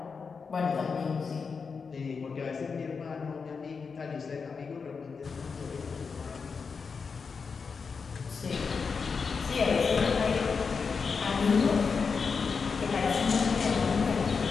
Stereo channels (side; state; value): right; quieter; 5.3 dB